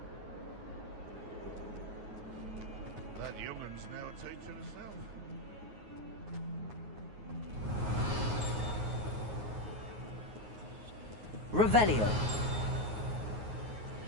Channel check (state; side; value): late; left; 9.4 ms